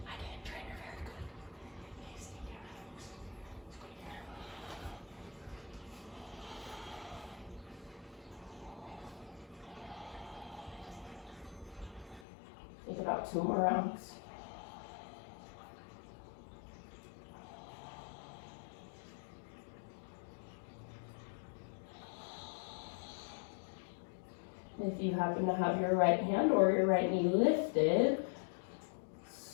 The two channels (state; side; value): drops out; right; at 12.2 s